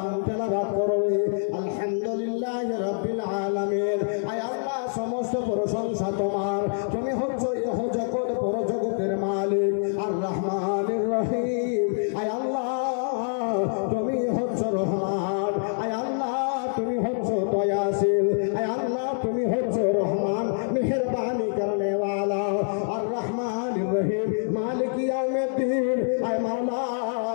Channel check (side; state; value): right; silent; digital silence